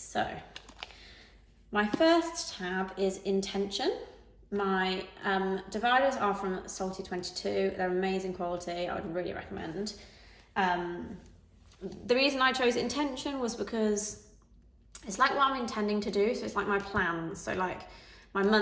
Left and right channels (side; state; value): both; identical; correlation 1.00